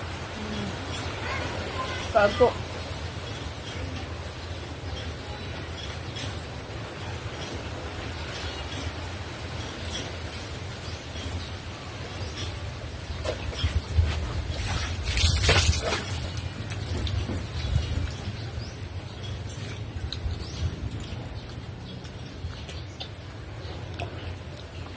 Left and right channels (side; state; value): both; identical; correlation 1.00